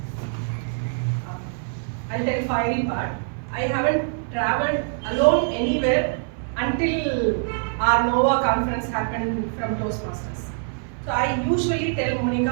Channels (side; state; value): left; silent; 63 dB below the other